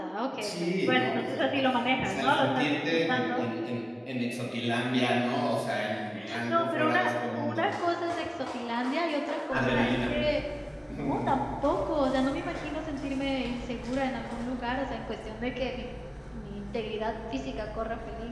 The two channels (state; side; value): identical; both; correlation 1.00